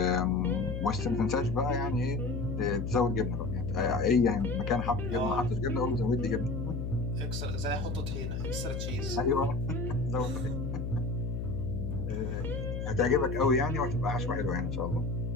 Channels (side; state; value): left; noise; hum, 3 dB below the sound